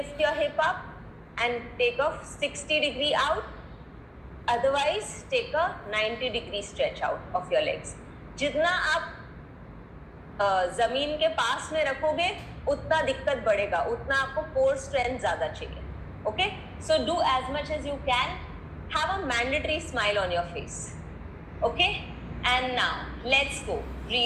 your hip up and take a 60-degree out. Otherwise, take a 90-degree stretch out of your legs. जितना आप जमीन के पास में रखोगे, उतना दिक्कत बढ़ेगा, उतना आपको कोर स्ट्रेंथ ज्यादा चाहिए. Okay, so do as much as you can. Have a mandatory smile on your face. Okay, and now let's go.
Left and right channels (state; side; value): identical; both; correlation 1.00